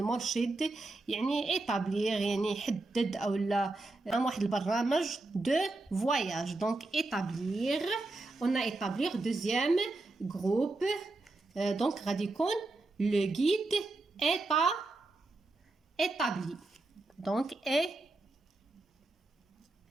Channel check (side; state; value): left; quieter; 3.1 dB